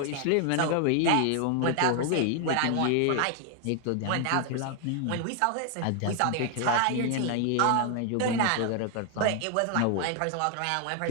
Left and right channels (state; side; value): different; both; correlation 0.00